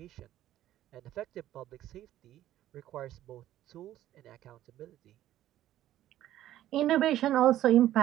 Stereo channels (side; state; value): left; quieter; 13.2 dB